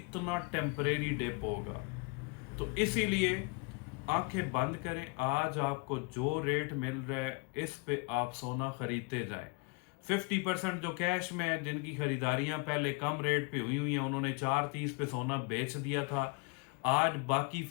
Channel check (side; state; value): right; quieter; 30.9 dB